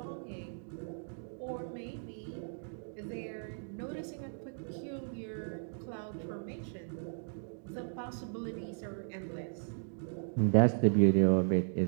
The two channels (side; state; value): left; silent; digital silence